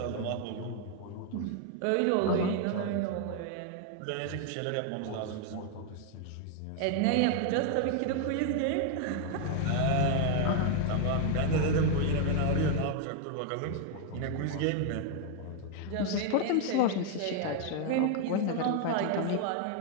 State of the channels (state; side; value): different; both; correlation 0.00